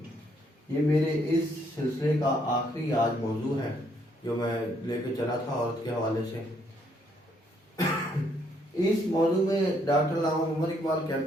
یہ میرے اس سلسلے کا آخری آج موضوع ہے جو میں لے کے چلا تھا عورت کے حوالے سے۔ اس موضوع میں ڈاکٹر علامہ محمد اقبال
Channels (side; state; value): both; normal; correlation 0.70